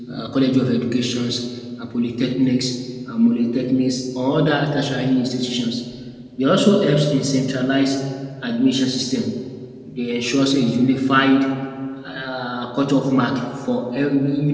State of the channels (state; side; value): identical; both; correlation 1.00